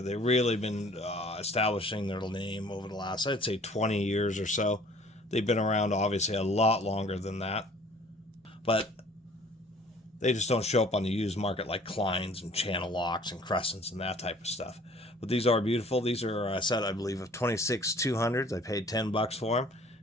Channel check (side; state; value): both; normal; correlation 0.53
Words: They've really been establishing their name over the last, I'd say, 20 years or so. They've been around, obviously, a lot longer than that. But they just don't show up on the used market like Kleins and channel locks and crescents and that type of stuff. But these are beautiful. These are a set, I believe, of 26 200s. I paid $10 for them.